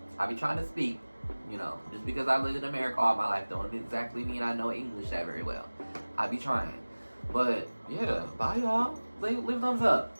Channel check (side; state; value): both; inverted; correlation -1.00